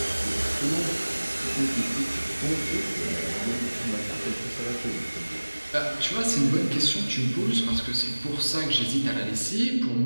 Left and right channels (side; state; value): both; inverted; correlation -1.00